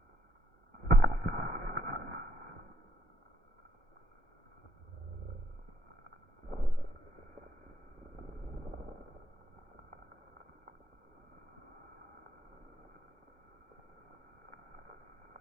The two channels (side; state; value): both; normal; correlation 0.71